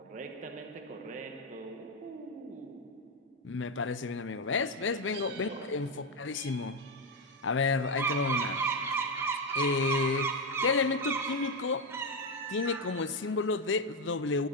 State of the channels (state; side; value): normal; both; correlation 0.07